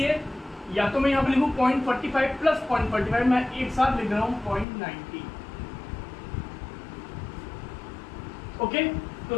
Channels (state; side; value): drops out; right; at 4.7 s